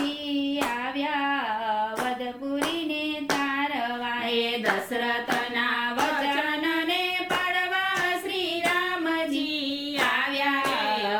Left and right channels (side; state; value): both; identical; correlation 1.00